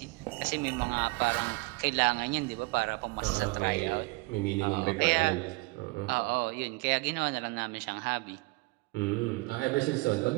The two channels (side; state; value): left; quieter; 25.5 dB